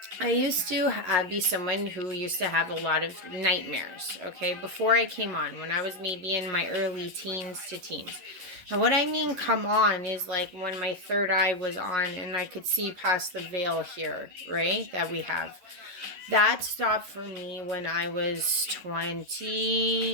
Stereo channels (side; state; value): left; late; 11 ms